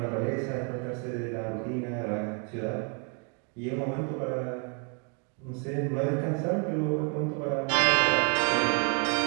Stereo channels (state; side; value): quieter; left; 38.1 dB